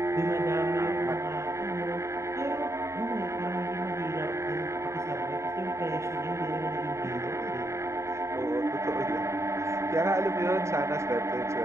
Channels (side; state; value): left; late; 0.14 ms